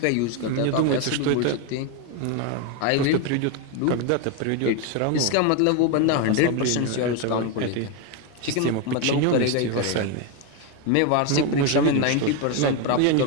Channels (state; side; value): different; both; correlation 0.02